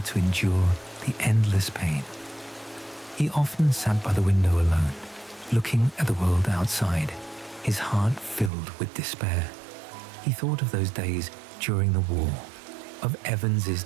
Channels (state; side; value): drops out; left; at 8.5 s